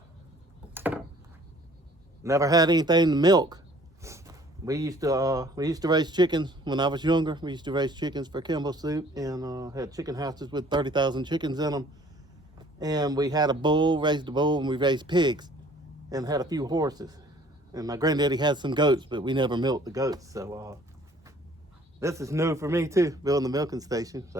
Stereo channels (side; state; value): both; normal; correlation 0.55